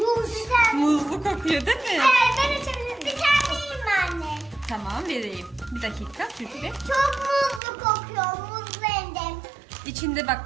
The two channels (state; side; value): drops out; left; at 7.6 s